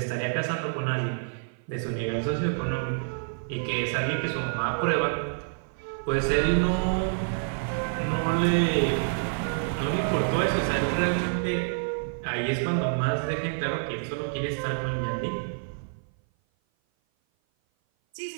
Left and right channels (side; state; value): left; silent; 56 dB below the other